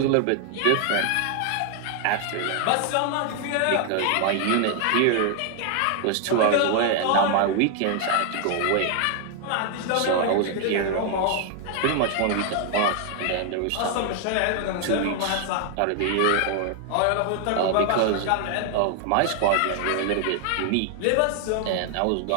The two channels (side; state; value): both; different; correlation 0.00